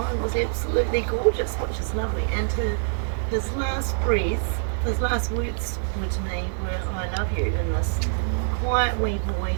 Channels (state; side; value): silent; left; digital silence